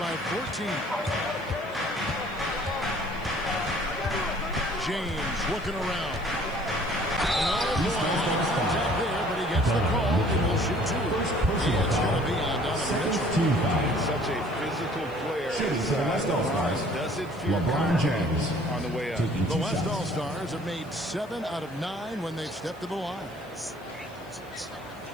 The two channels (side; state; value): left; noise; hiss, 28 dB below the sound